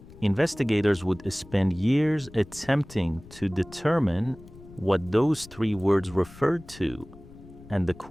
Investigators would spend years attempting to determine what those 3 words referred to, and the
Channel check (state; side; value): noise; left; rumble, 20 dB below the sound